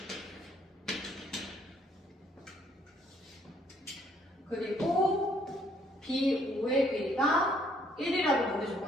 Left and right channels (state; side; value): normal; both; correlation 0.65